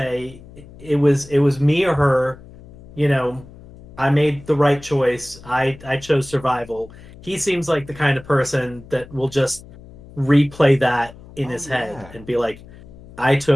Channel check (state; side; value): noise; left; hum, 20 dB below the sound